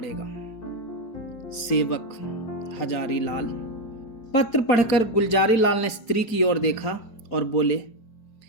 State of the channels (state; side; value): late; right; 4.3 ms